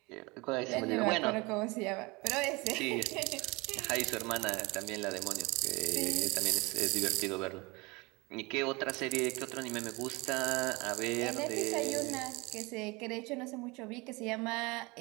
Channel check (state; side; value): quieter; left; 25.3 dB